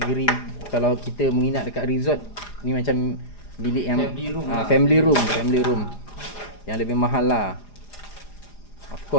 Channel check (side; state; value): right; late; 4.9 ms